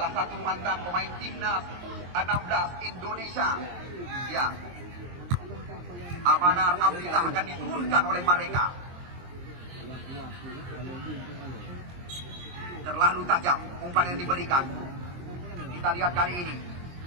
satu mantan pemain timnas 16 Indonesia. Ya, Amanar Abdillah akan diturunkan oleh mereka. Terlalu tajam umpan yang diberikan. Kita lihat kali ini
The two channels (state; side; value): late; left; 23 ms